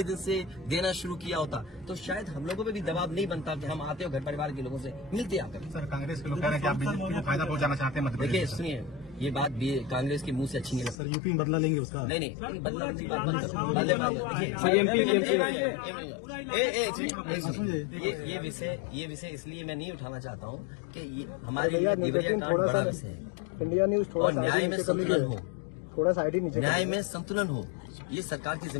दिन से देना शुरू किया होता, तो शायद हम लोगों पे भी दबाव नहीं बनता कि हम आते हो घर परिवार के लोगों से मिलते आकर। सर कांग्रेस के लोग कह रहे हैं कि आप बीजेपी को फायदा पहुंचाना चाहते हैं। देखिए सुनिए, ये बात भी कांग्रेस के मुंह से अच्छी नहीं लगती। सर यूपी में बदला लेंगे उसका? नहीं बदला की बात बंद करो। ये विषय इसलिए मैं नहीं उठाना चाहता हूँ कि ये हमारे लिए देवरिया कांड बड़ा विषय है। इंडिया न्यूज थोड़ा न्याय में संतुलन हो, थोड़ा साइड ही नीचे, न्याय में संतुलन हो, ये सरकार की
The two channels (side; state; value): right; drops out; at 11.0 s